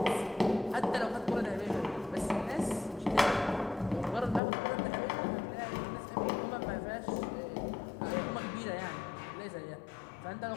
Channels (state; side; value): drops out; right; at 4.4 s